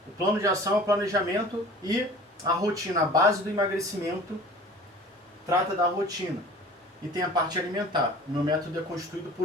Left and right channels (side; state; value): both; normal; correlation 0.43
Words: O plano de ação é o planejamento e a rotina, a base do emagrecimento, trata da rotina. E tem a parte alimentar. O meu método é constituído